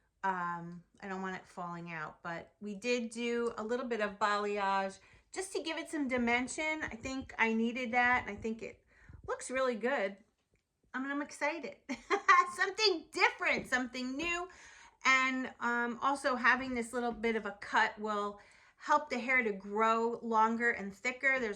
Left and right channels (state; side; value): identical; both; correlation 1.00